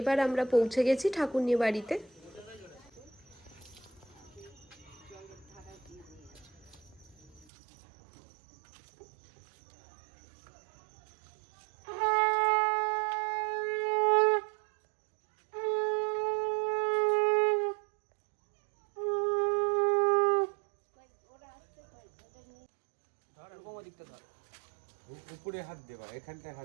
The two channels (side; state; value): left; drops out; at 7.5 s